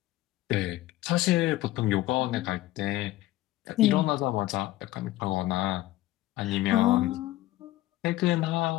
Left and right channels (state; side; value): quieter; right; 16.5 dB